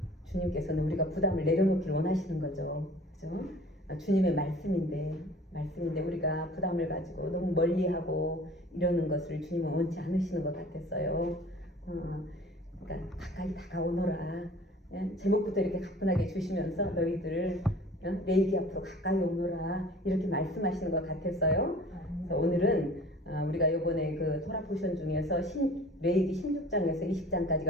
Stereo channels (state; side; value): normal; both; correlation 0.47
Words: 주님께서는 우리가 부담을 내려놓기를 원하시는 거죠. 그죠? 주님의 말씀인데 우리가 부담을 가지고 너무 멀리하고 이러는 것을 주님은 원치 않으시는 것 같았어요. 그러니까 가까이 다가오너라. 제목부터 이렇게 가뿐하게 주시면서 너희들 레위기 앞으로 가까이 오너라 이렇게 말씀하시는 것 같았어요. 그래서 오늘은 우리가 이번에 그 토라 포션 중에서 레위기 16장에서